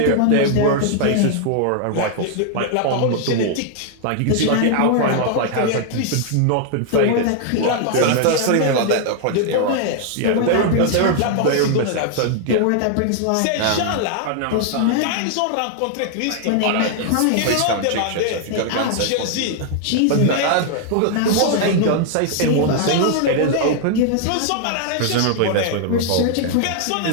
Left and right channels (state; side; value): different; both; correlation 0.00